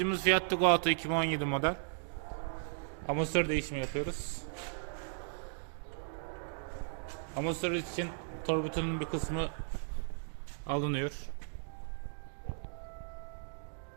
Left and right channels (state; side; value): silent; left; digital silence